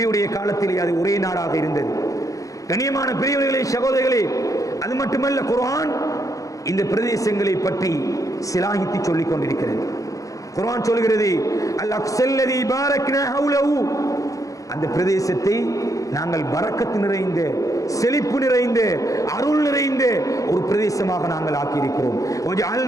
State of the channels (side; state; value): right; late; 0.16 ms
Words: காலத்திலே அது ஒரே நாடாக இருந்தது. கண்ணியமான பெரியவர்களே, சகோதரர்களே, அது மட்டுமல்ல, குர்ஆன் இந்த பிரதேசங்களை பற்றி சிலாகித்து சொல்லிக் கொண்டிருக்கிறது. குர்ஆன் சொல்கிறது, அல் அக்ஸல்லதி பாரக்னா ஹவுலஹு, அந்த பிரதேசத்தை நாங்கள் பரக்கத்து நிறைந்த, செழிப்பு நிறைந்த, அருள் நிறைந்த ஒரு பிரதேசமாக நாங்கள் ஆக்கியிருக்கிறோம்.